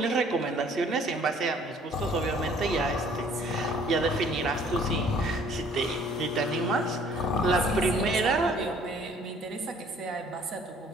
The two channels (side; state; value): both; normal; correlation 0.57